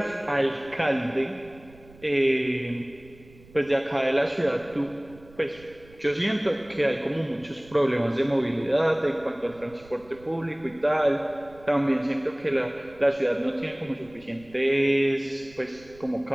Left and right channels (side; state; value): right; noise; rumble, 24 dB below the sound